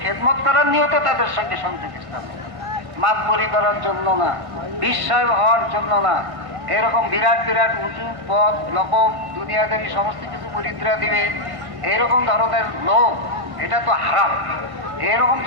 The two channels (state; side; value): late; left; 1.6 ms